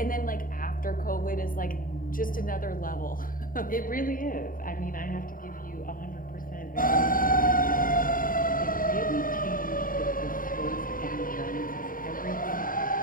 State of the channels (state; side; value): late; right; 0.41 ms